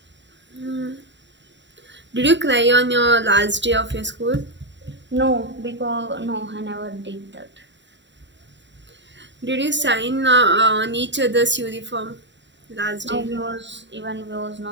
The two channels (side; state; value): left; late; 0.52 ms